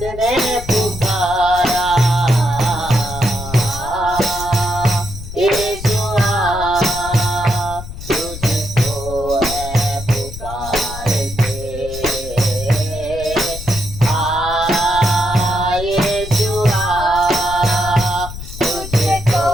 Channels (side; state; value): left; noise; rumble, 11 dB below the sound